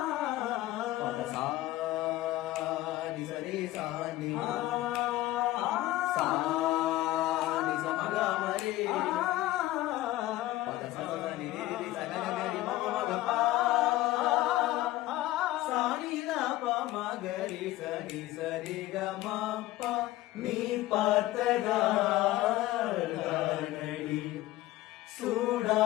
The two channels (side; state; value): right; quieter; 16.4 dB